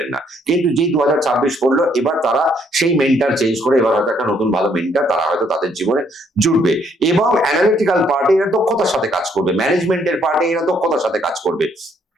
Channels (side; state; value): both; normal; correlation 0.68